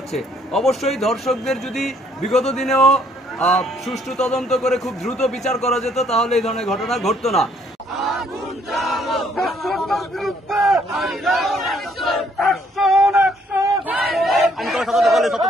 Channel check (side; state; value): both; normal; correlation 0.66